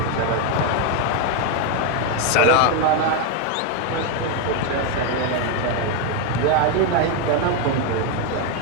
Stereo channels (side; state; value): both; different; correlation 0.01